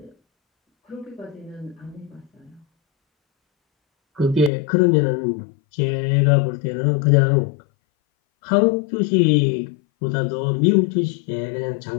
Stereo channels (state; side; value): drops out; right; at 4.5 s